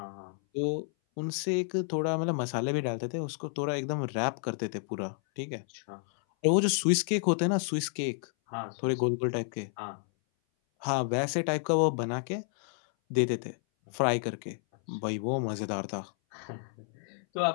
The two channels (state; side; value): silent; right; 57 dB below the other